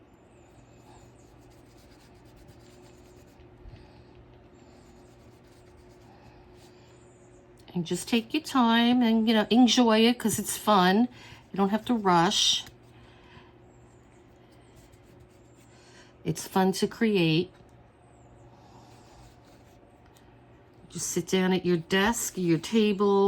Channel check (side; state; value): both; identical; correlation 1.00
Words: And just take your time and, enjoy it, because it's fun. You don't have to rush. It's fun to create. Just sit down at your desk, your